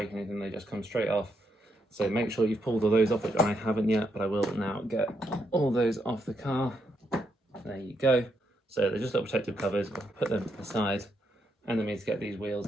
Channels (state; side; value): normal; both; correlation 0.79